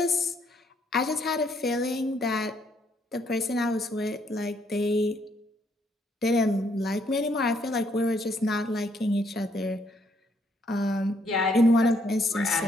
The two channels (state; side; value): normal; both; correlation 0.70